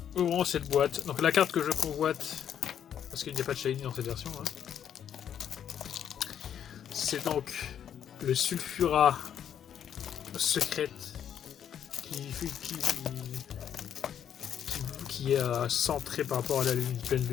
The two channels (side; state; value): right; quieter; 9.2 dB